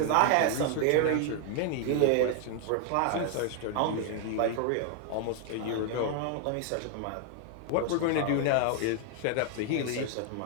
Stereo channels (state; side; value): different; both; correlation 0.00